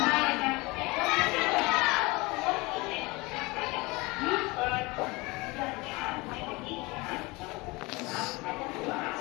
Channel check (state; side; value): quieter; right; 23.9 dB